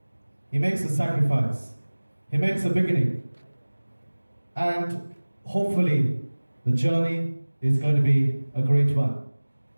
He makes a sacrifice. He makes a beginning. And hopefully the journey is going to be a great one.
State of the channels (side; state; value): both; inverted; correlation -1.00